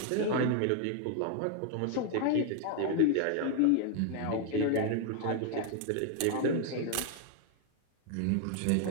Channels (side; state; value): both; different; correlation 0.00